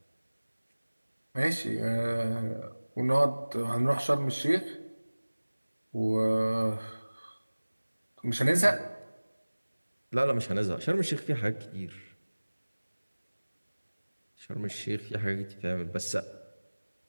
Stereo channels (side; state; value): both; inverted; correlation -1.00